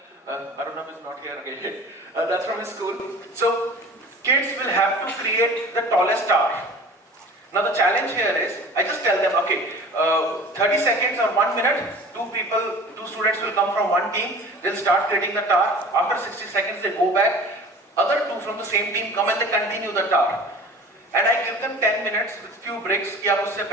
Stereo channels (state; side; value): normal; both; correlation 0.42